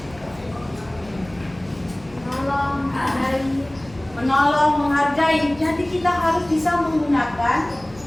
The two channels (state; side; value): noise; left; hum, 22 dB below the sound